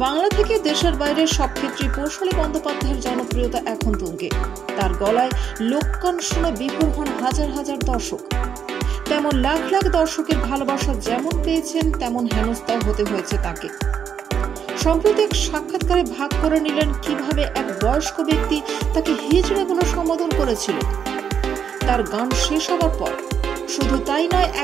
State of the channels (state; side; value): quieter; left; 7.7 dB